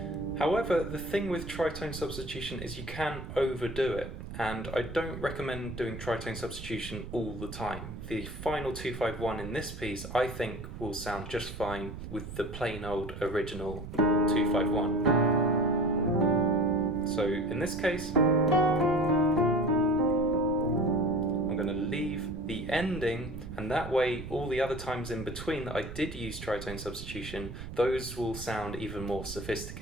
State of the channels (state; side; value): noise; right; rumble, 10 dB below the sound